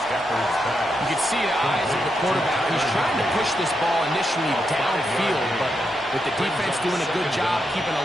can see the eyes of the quarterback. He's trying to push this ball initially downfield, but with the defense doing a good job keeping a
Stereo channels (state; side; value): normal; both; correlation 0.83